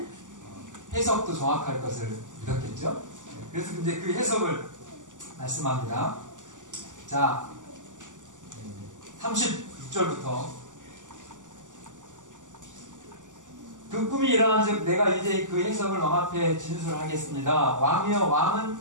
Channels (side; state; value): left; late; 0.87 ms